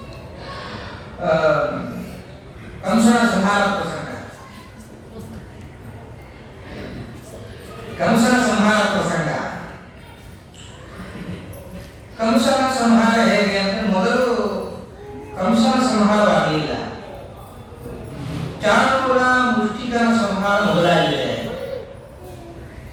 ಕಂಸನ ಸಂಹಾರ ಪ್ರಸಂಗ. ಕಂಸನ ಸಂಹಾರ ಪ್ರಸಂಗ. ಕಂಸನ ಸಂಹಾರ ಹೇಗೆ ಅಂದ್ರೆ ಮೊದಲು ಕಂಸನ ಸಂಹಾರವಾಗಲಿಲ್ಲ. ಚಾಣೂರ ಮುಷ್ಟಿಕನ ಸಂಹಾರ ಮೊದಲಾಗಿದೆ.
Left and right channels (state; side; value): identical; both; correlation 1.00